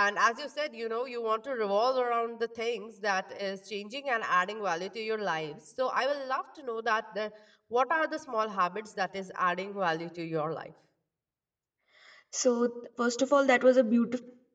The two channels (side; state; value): both; identical; correlation 1.00